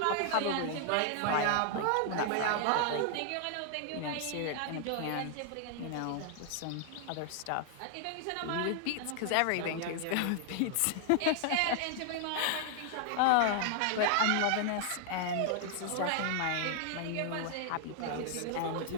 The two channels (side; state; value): both; different; correlation 0.00